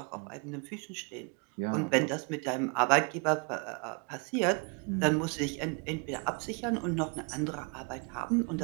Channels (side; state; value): left; quieter; 34.2 dB